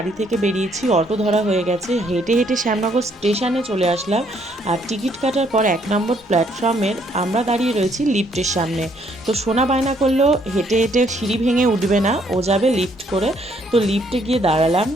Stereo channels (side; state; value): both; normal; correlation 0.68